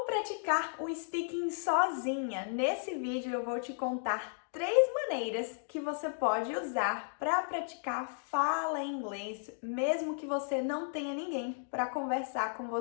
praticar o speaking sozinha, nesse vídeo eu vou te contar 3 maneiras que você pode usar para praticar fala em inglês, mesmo que você não tenha ninguém para conversar com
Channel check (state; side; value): silent; right; digital silence